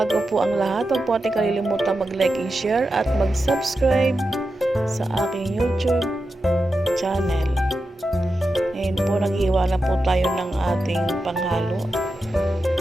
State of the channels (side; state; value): both; normal; correlation 0.90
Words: po ang lahat, huwag po natin kalilimutan mag-like and share at mag-subscribe sa aking YouTube channel. Ngayon po, nag-iwa na po tayo ng ating panghalo.